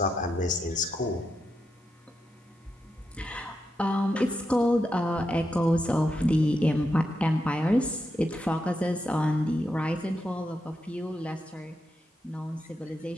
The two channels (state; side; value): normal; both; correlation 0.85